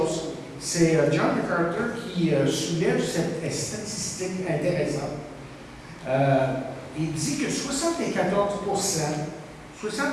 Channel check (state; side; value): identical; both; correlation 1.00